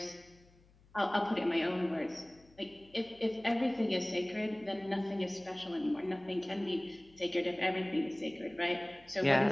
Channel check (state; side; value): noise; left; hum, 29 dB below the sound